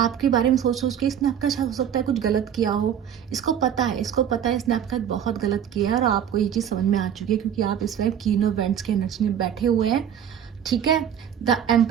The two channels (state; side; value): quieter; left; 9.2 dB